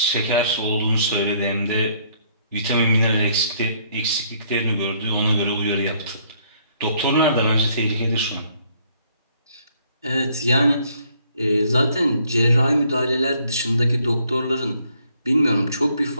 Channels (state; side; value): inverted; both; correlation -0.66